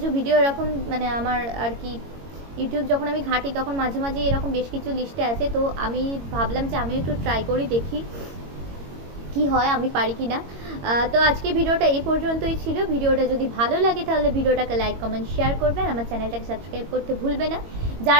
ভিডিও এরকম মানে আমার আর কি ইউটিউব যখন আমি ঘাঁটি তখন মাঝে মাঝে এরকম বেশ কিছু লিস্টে আছে, তো আমি ভাবলাম যে আমি একটু ট্রাই করি, দেখি কি হয়, আমি পারি কি না। তো আজকে ভিডিওটা এই পর্যন্তই ছিল। ভিডিওটা যদি ভালো লাগে তাহলে ভিডিওটাকে লাইক কমেন্ট শেয়ার করবেন, আমার চ্যানেলটাকে সাবস্ক্রাইব করতে ভুলবে না।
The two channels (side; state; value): left; late; 22 ms